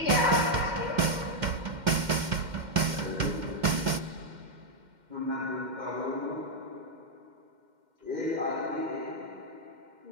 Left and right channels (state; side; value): late; left; 2.1 ms